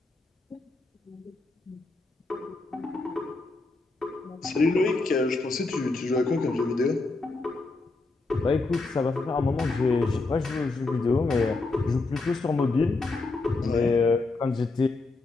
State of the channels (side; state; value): right; quieter; 3.4 dB